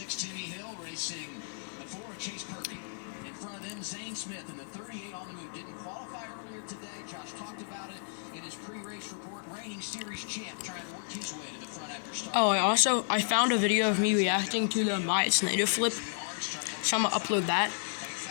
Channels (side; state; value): right; silent; digital silence